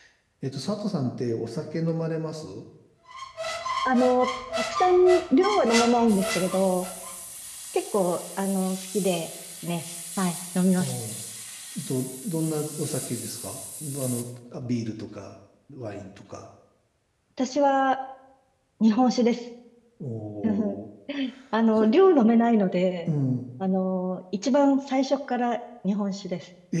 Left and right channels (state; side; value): identical; both; correlation 1.00